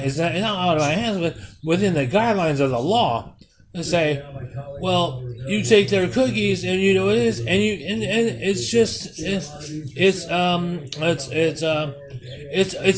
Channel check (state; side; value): identical; both; correlation 1.00